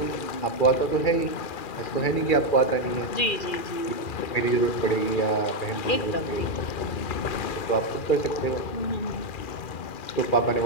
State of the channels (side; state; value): right; late; 2.4 ms